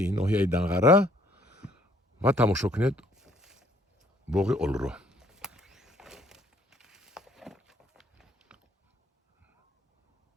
ноҳияи Данғара ва тамошо кунед боғи олуро.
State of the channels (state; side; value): normal; both; correlation 0.63